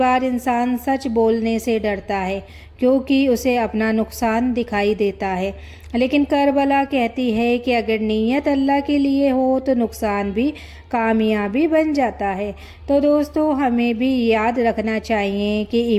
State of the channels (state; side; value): identical; both; correlation 1.00